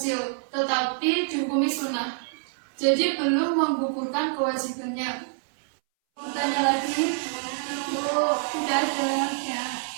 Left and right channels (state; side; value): silent; left; 61 dB below the other